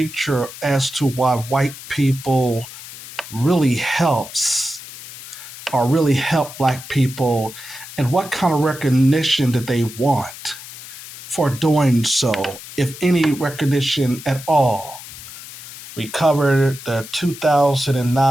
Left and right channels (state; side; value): noise; left; hiss, 14 dB below the sound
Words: as to why white people really helps or really help black people, and what kind of recognition did they want for doing so, if any recognition at all? We covered the